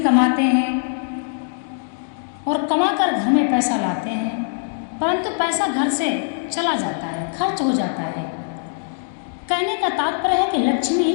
हैं और कमाकर घर में पैसा लाते हैं, परंतु पैसा घर से चला जाता है, खर्च हो जाता है। कहने का तात्पर्य है कि लक्ष्मी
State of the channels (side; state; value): right; silent; digital silence